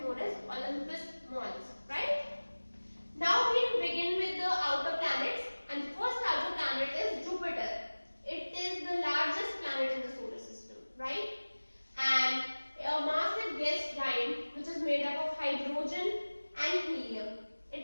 known as Olympus Mons, right? Now we begin with the outer planets, and the first outer planet is Jupiter. It is the largest planet in the solar system, right? And a massive gas giant which is made up of hydrogen and helium. It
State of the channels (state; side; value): inverted; both; correlation -1.00